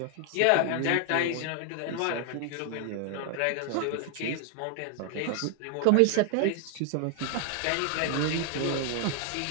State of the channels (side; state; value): both; different; correlation 0.00